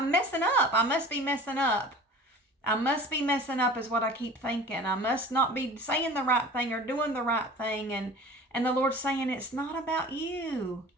messing up. I must be messing up. I must be messing up is what I keep thinking. I must not be saying the right thing or doing the right thing, and the Lord's saying, it's not about you.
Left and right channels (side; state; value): both; normal; correlation 0.41